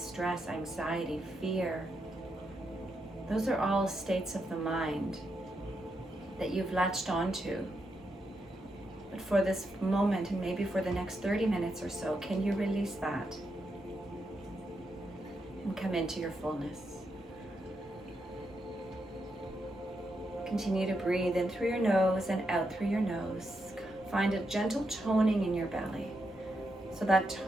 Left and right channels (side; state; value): both; normal; correlation 0.83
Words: anxiety, fear, those are all states of the mind that you've latched onto. But for this moment, and maybe for the next 30 minutes or so, can you release that and come into your fullness? Continue to breathe in through your nose and out through your nose. Find a gentle toning in your belly. So that